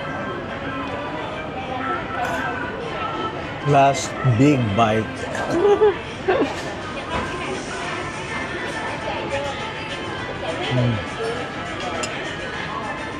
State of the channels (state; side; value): identical; both; correlation 1.00